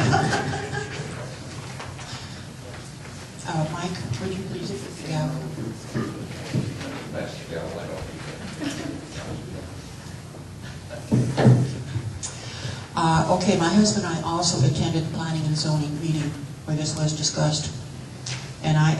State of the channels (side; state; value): both; identical; correlation 1.00